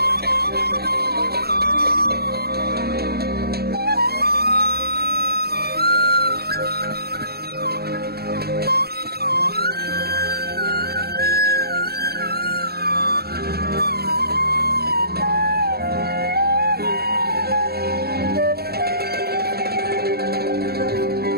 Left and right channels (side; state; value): left; late; 0.46 ms